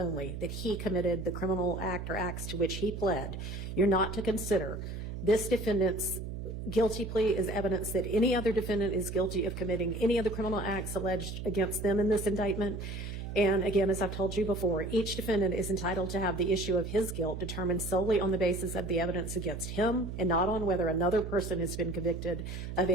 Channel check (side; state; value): right; noise; hum, 7 dB below the sound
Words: that he committed the criminal act or acts to which he pled. You're not to consider this defendant's guilty plea is evidence that any other defendant is guilty of committing any of the criminal acts alleged against them in this indictment. And again, as I've told you before, each defendant is entitled to have the issue of his guilt determined solely on the basis of the evidence against him and not on whether another person has been convicted of